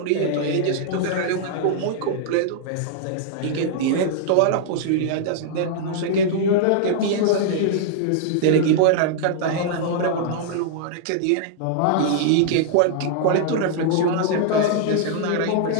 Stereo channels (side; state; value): both; different; correlation -0.01